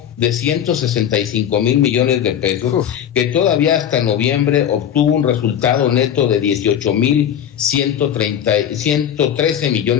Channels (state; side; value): quieter; right; 9.6 dB